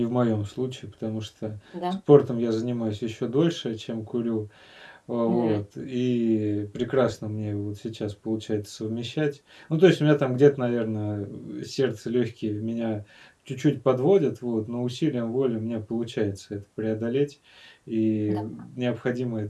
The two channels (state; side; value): identical; both; correlation 1.00